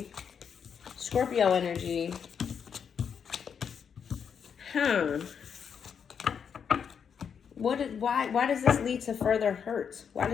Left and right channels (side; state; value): right; quieter; 7.1 dB